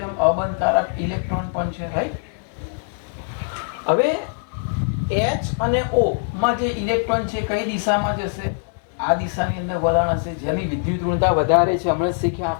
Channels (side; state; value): right; silent; digital silence